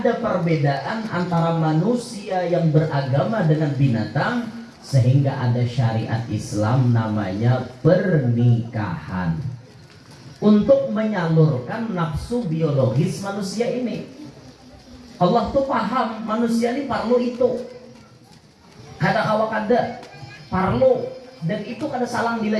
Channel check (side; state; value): both; identical; correlation 1.00